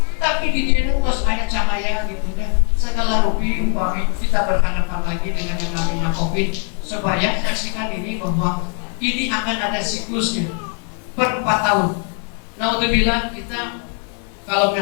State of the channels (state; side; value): quieter; right; 39.7 dB